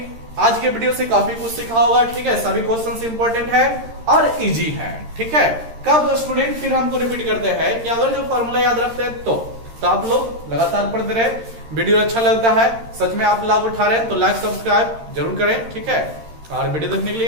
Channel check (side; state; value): left; late; 13 ms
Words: आज के वीडियो से काफी कुछ सीखा होगा। ठीक है, सभी क्वेश्चंस इंपॉर्टेंट है और इजी है। ठीक है, कब स्टूडेंट फिर हमको रिपीट करते हैं कि अगर जो फॉर्मूला याद रखते हैं तो आप लोग लगातार पढ़ते रहे। वीडियो अच्छा लगता है, सच में आप लाभ उठा रहे हैं तो लाइक सब्सक्राइब जरूर करें। ठीक है, और वीडियो देखने के लिए